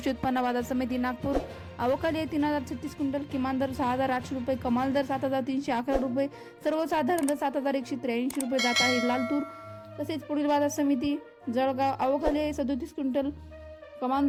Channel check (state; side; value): identical; both; correlation 1.00